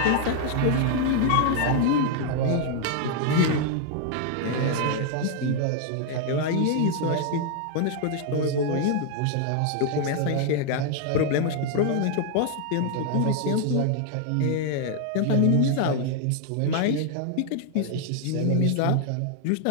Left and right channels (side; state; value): both; different; correlation 0.00